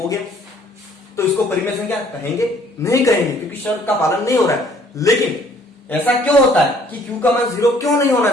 गया, तो इसको परिमेय संख्या कहेंगे, नहीं कहेंगे, क्योंकि शर्त का पालन नहीं हो रहा है। लेकिन ऐसा क्यों होता है कि q का मान 0 क्यों नहीं होना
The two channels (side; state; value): both; normal; correlation 0.59